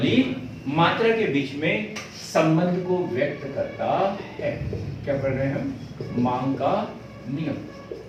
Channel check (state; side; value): identical; both; correlation 1.00